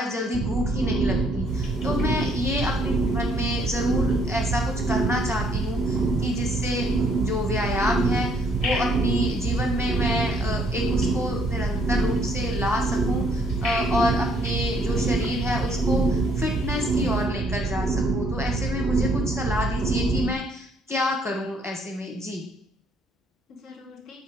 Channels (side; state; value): both; normal; correlation 0.66